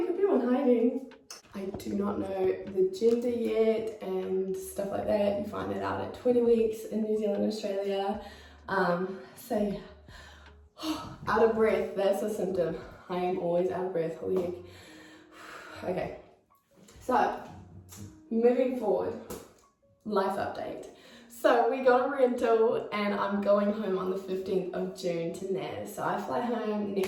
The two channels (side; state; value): both; identical; correlation 1.00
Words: could be one hiding. I do not know the gender yet and stuff like that. You find that out at 20 weeks in New Zealand and Australia. So yeah, out of breath, that's a symptom. I am always out of breath, holy heck. Okay, so moving forward, life update. So we got a rental and I'm going home on the 15th of June to Naz. So I fly home